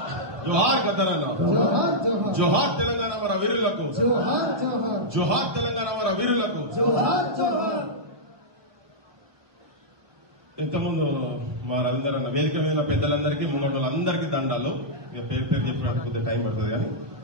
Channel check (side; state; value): left; late; 1.0 ms